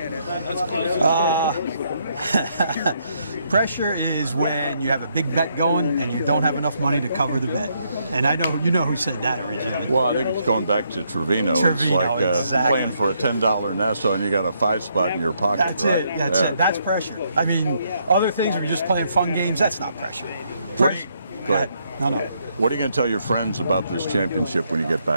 Pressure is when you have a big bet going and you don't have enough money to cover the bet. And I know you know who said that originally. Well, I think it's going back to Trevino. It's like exactly. Playing for a $10 Nassau and you got a 5 spot in your pocket. That's right? it. That's it. That's pressure. I mean, other things were just playing fun games. That's not pressure. Go ahead. No. What are you going to tell your friends about this championship when you get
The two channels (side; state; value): both; inverted; correlation -0.74